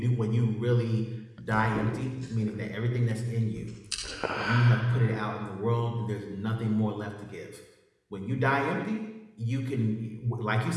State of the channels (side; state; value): both; identical; correlation 1.00